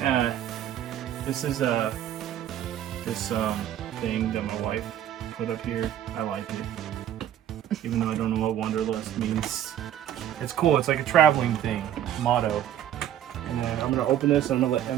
This is this thing that my wife put up here. I like it, even though I don't know what Wanderlust means. It's cool. It's like a traveling thing, motto. And then I'm gonna open this. And I'm gonna let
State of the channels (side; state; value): left; quieter; 11.1 dB